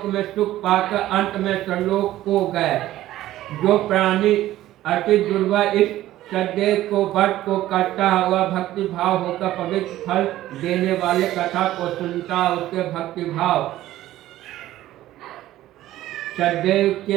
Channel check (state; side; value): quieter; left; 14.5 dB